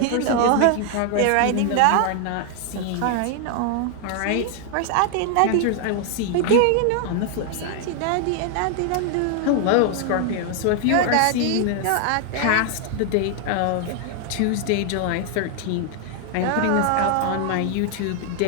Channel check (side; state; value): both; different; correlation 0.00